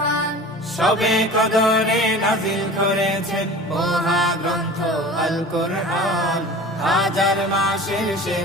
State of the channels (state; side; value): normal; both; correlation 0.39